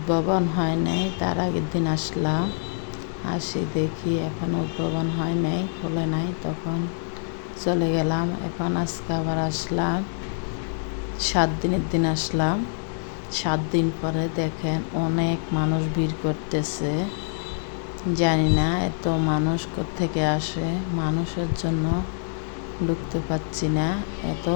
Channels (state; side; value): silent; right; digital silence